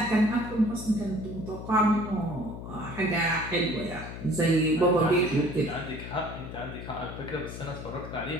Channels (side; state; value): left; noise; hum, 10 dB below the sound